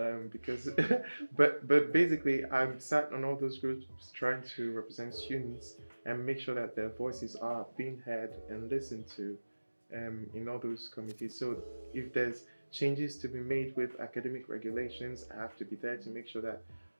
Because, but basically, I'm sat on all those groups trying to represent students and make sure that their voices are being heard and listened to in all those committees. So if there's changes to be made with academic regulations, I have to be there to make sure that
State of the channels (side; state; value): both; inverted; correlation -1.00